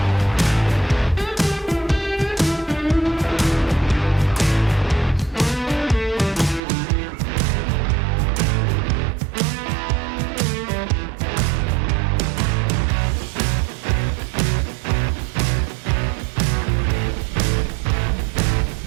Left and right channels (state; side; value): drops out; left; at 6.6 s